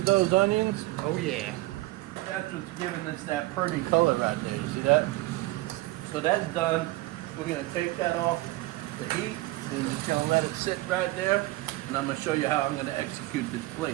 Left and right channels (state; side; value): quieter; left; 19.7 dB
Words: those onions? Oh yeah. That's what's giving us that pretty color right there. You see that? So that's done. We're gonna take that off the heat. We're just gonna let it sit right there. And I'm gonna show you how I'm gonna execute this